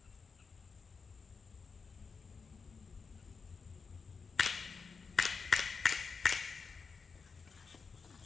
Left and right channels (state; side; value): quieter; right; 5.2 dB